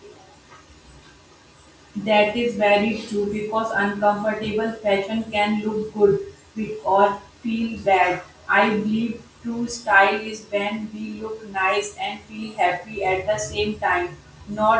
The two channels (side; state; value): both; identical; correlation 1.00